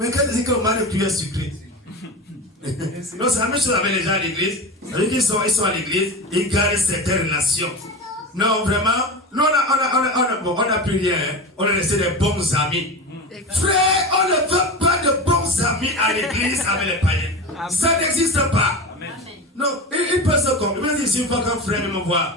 quand il dit que le mari de pluie est sucré. Non, c'est la même chose avec les gens à l'église. Ils sont à l'église, ils gardent certaines relations. Non, vraiment, nous on n'a plus rien. Hein. On a laissé des bons amis. Frère, on ne veut pas de bons amis à l'église avec les païens. Amen. Ça n'existe pas. Amen. Non, il peut se comprendre. Il me dit, si une fois qu'un frère me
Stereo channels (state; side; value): normal; both; correlation 0.26